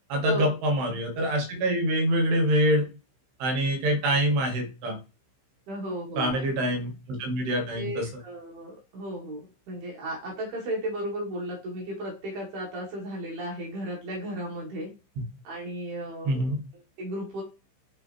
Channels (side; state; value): left; late; 15 ms